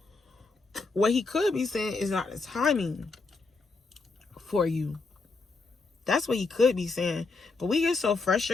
What he could be saying is not the timing for you. That's what he could be saying. But we get so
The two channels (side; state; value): right; quieter; 3.9 dB